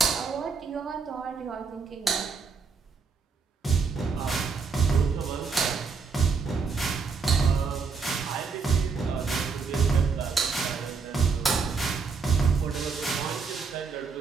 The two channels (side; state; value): left; quieter; 5.0 dB